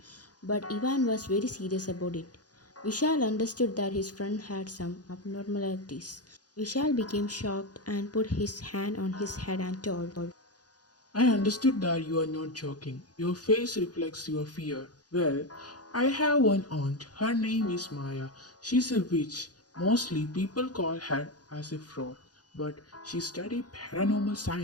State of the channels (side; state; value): right; late; 0.69 ms